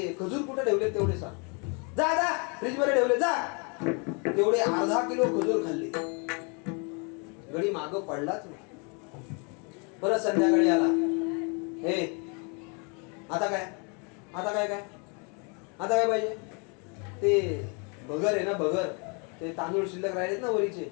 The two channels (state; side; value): quieter; right; 34.8 dB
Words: खजूर कुठे ठेवले तेवढे सांग. जा जा फ्रीज मध्ये ठेवले जा. तेवढे अर्धा किलो खजूर खाल्ले. गडी माग पडलाच नाही. परत संध्याकाळी आला. हे आता काय आता काय काय आता काय पाहिजे? ते भगर आहे ना भगर, ते तांदूळ शिल्लक राहिलेत ना वरीचे,